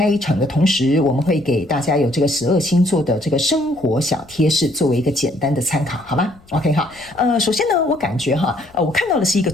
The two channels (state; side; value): noise; left; rumble, 26 dB below the sound